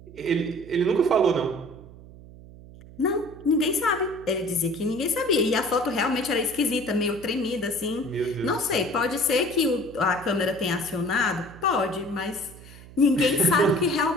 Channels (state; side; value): noise; right; hum, 19 dB below the sound